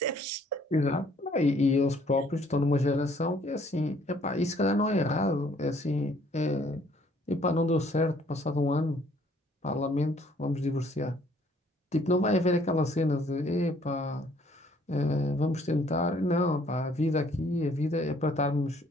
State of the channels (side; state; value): both; normal; correlation 0.62